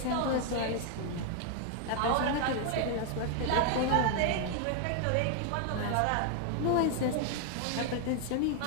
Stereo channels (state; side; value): different; both; correlation 0.00